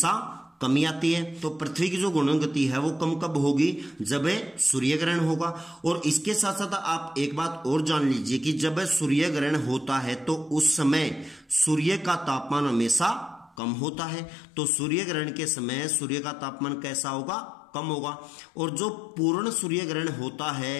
कमी आती है। तो पृथ्वी की जो घूर्णन गति है वो कम कब होगी? जब सूर्य ग्रहण होगा। और इसके साथ साथ आप एक बात और जान लीजिए कि जब सूर्य ग्रहण होता है तो उस समय सूर्य का तापमान हमेशा कम होता है। तो सूर्य ग्रहण के समय सूर्य का तापमान कैसा होगा? कम होगा। और जो पूर्ण सूर्य ग्रहण होता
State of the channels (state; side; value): drops out; right; at 13.6 s